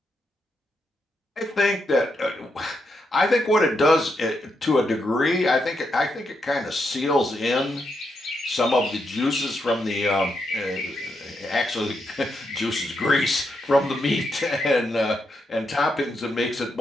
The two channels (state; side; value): normal; both; correlation 0.82